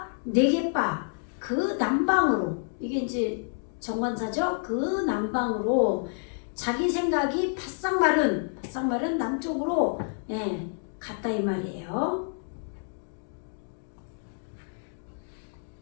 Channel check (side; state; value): right; silent; 59 dB below the other